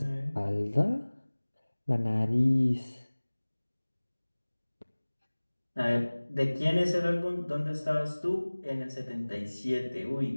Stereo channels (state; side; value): inverted; both; correlation -1.00